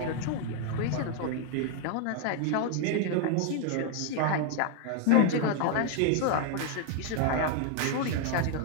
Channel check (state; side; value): different; both; correlation 0.00